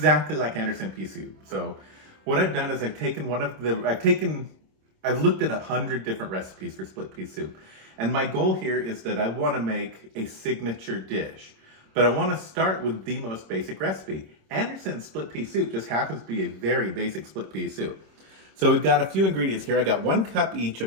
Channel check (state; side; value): late; left; 26 ms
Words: like Anderson pea soup. So what I've done is I've looked at 100 different recipes for split pea soup. And my goal here is that I want to make a signature dish. But I want to start with the most basic recipe. Anderson's split pea soup just happens to be a very basic split pea soup. So we've got a few ingredients here. I got 1 cup each